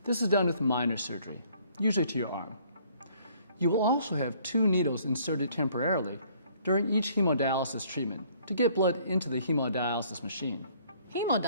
This is done with minor surgery, usually to your arm. You will also have 2 needles inserted temporarily during each hemodialysis treatment to get blood into the hemodialysis machine.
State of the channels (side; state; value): both; inverted; correlation -0.60